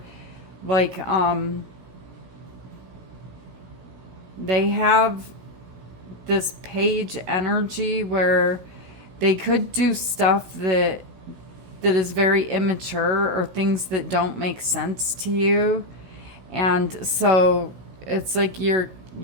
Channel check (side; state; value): left; late; 16 ms